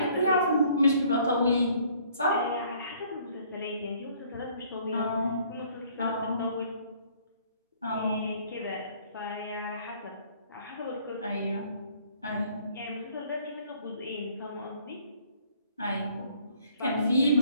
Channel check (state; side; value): inverted; both; correlation -0.60